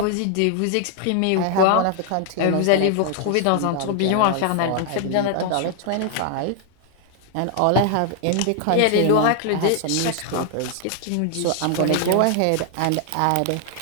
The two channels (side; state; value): both; different; correlation 0.00